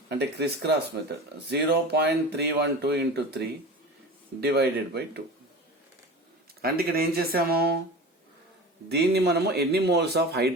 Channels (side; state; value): both; normal; correlation 0.33